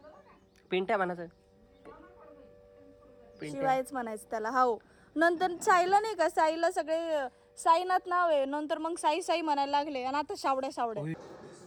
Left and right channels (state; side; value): identical; both; correlation 1.00